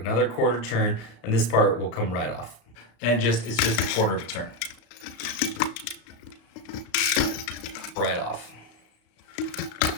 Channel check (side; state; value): right; late; 34 ms